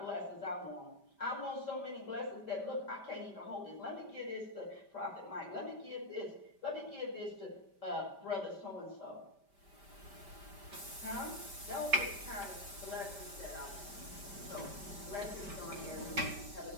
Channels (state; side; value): late; left; 5.1 ms